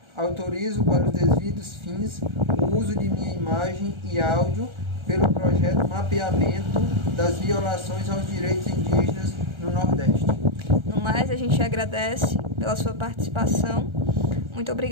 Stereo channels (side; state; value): left; late; 1.3 ms